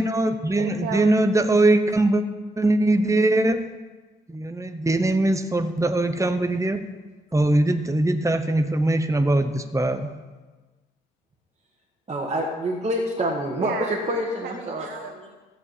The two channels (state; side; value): normal; both; correlation 0.81